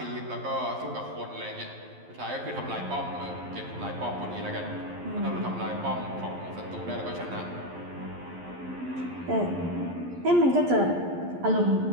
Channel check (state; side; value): late; left; 11 ms